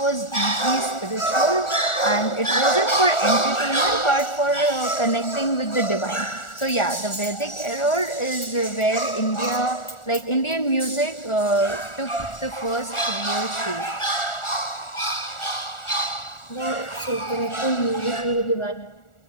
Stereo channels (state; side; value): late; right; 1.4 ms